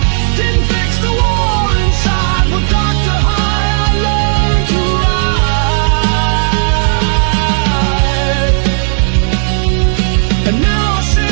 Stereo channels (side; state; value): left; silent; 60 dB below the other